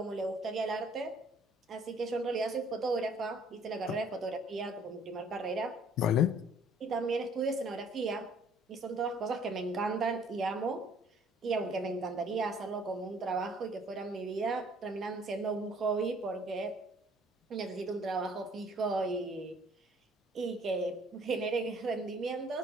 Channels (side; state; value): both; normal; correlation 0.58